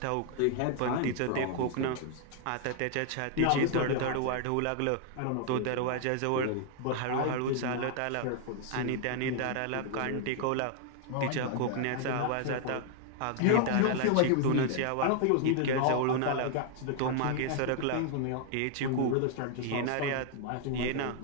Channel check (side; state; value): both; different; correlation 0.00